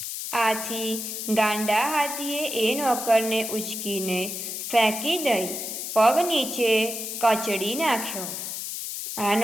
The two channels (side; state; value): left; noise; hiss, 5 dB below the sound